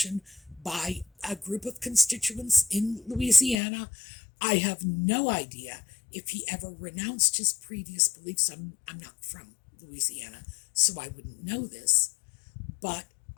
by a group of constituents in Louisiana. I have no idea if he ever renounced his previous beliefs. I'm not from Louisiana, so I wouldn't know this. But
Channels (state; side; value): drops out; right; at 3.6 s